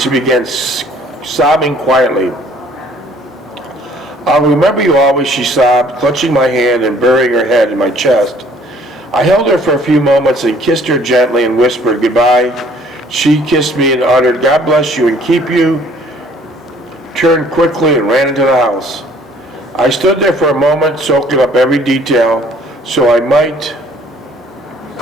began sobbing quietly. "I'll remember you always," she sobbed, clutching my hand and burying her head in my chest. I held her for a few moments and kissed her gently and whispered goodbye. She kissed me and uttered, "God bless you and keep you," turned quickly and ran into the house. I stood there for a moment, soaking up every detail, so I might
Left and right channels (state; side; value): normal; both; correlation 0.57